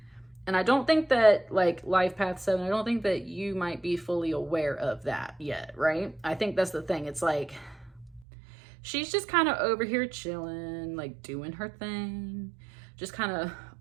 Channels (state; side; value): drops out; left; at 8.2 s